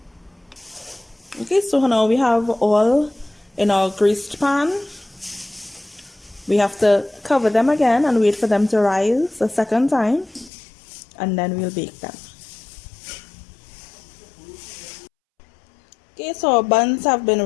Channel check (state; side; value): drops out; right; at 10.5 s